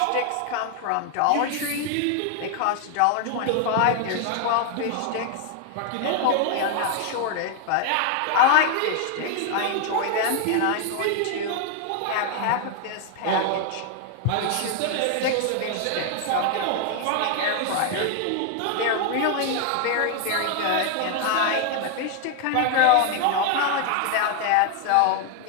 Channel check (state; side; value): different; both; correlation 0.00